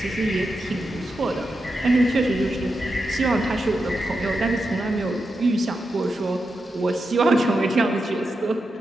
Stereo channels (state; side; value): normal; both; correlation 0.87